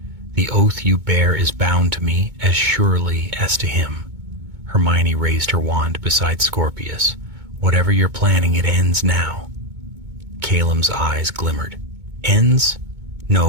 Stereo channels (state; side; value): late; left; 2.2 ms